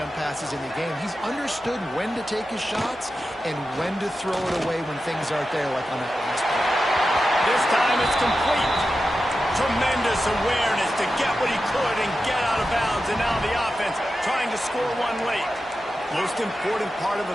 passes in the game. He's understood when to take his shots and when to throw it away when things aren't there, like on that last play. This time it's complete. Tremendous awareness to get what he could and get out of bounds, and now the offense trying to score one late. Most important part of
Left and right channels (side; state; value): both; normal; correlation 0.91